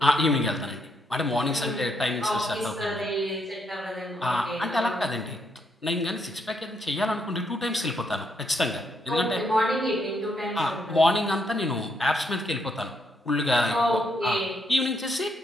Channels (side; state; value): both; normal; correlation 0.76